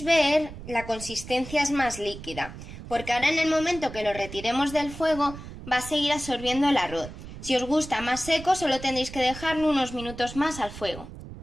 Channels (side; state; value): right; noise; rumble, 13 dB below the sound